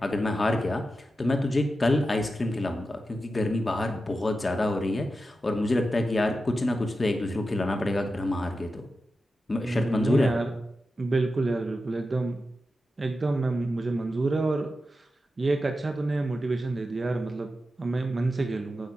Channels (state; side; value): normal; both; correlation 0.91